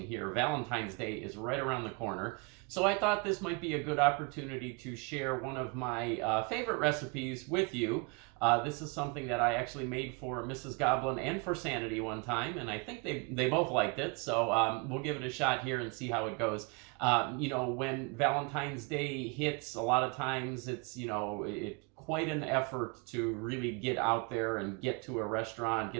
here. Valentine's Day is right around the corner, so I thought this might be a good opportunity to share one of my favorite recipes with you. This is something that I actually made for Mrs. Goblin and for Sanity one time, and I think they both liked it, so we'll give it a shot here and see how it goes. You know, when Valentine's Day hits, a lot of times it's, quite an effort to really get out there and get to a restaurant,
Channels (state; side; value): quieter; left; 31.0 dB